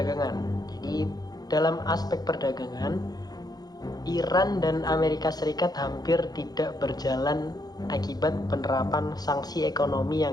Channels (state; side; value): late; right; 0.19 ms